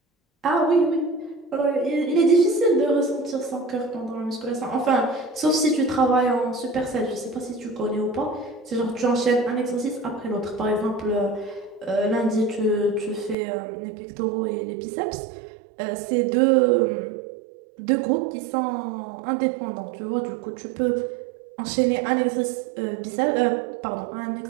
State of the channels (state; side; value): drops out; left; at 13.4 s